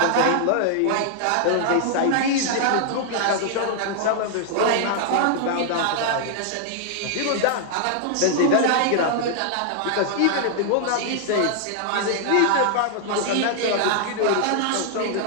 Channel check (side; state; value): both; different; correlation 0.00